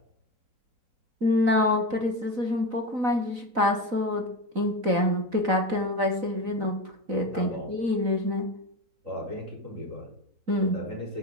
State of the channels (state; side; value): late; left; 4.0 ms